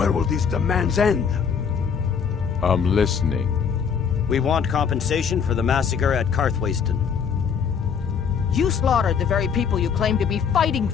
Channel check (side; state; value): right; quieter; 6.8 dB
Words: will these demands end? I'm listening. We want compensation for the massacre at Karthwasten. You slaughtered the very people you claim to be fighting